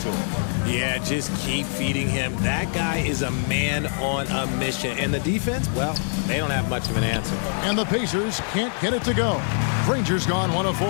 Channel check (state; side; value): silent; right; 62 dB below the other